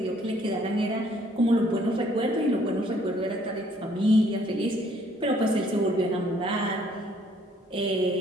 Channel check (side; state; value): both; normal; correlation 0.63